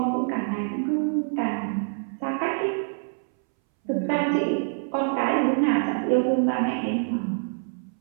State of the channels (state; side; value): silent; left; 61 dB below the other